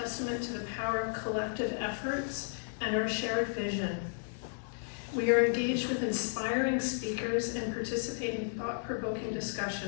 to the power of collective efforts and our shared vision. We are engaged with inspiring speakers and participate in thought-provoking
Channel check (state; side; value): silent; right; 55 dB below the other